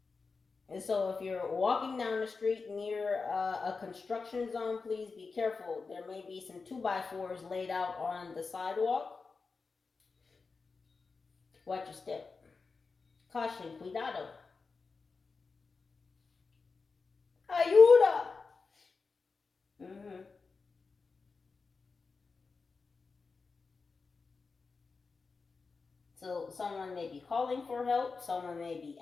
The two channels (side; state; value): right; quieter; 4.5 dB